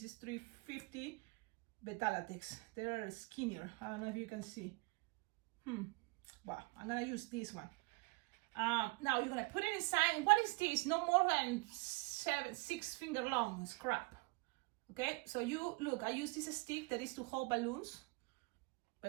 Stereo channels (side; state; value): left; quieter; 27.1 dB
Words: is 350 Beta-Latex. They're skinnier. I don't know if you can see. Well, I'm gonna use this one. Now you're gonna put it inside. What is this? No more than 6 finger long scrap. Okay, so you look, I use this stick that is to hold balloons,